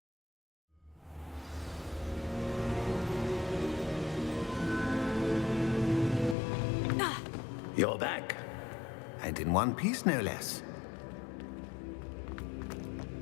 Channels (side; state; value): right; drops out; at 6.4 s